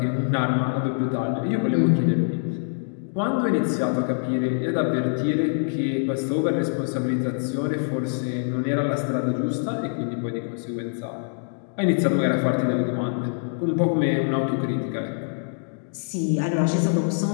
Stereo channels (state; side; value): silent; right; digital silence